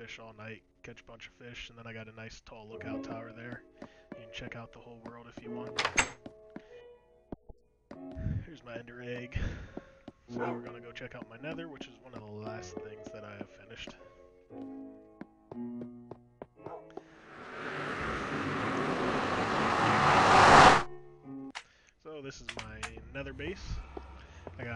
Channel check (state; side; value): identical; both; correlation 1.00